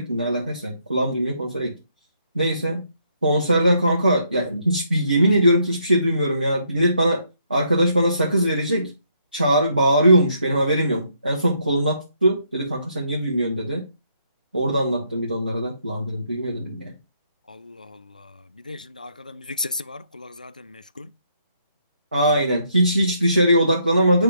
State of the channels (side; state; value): both; inverted; correlation -0.73